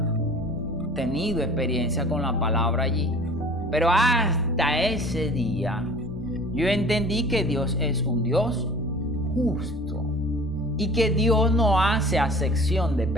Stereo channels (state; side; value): noise; left; hum, 21 dB below the sound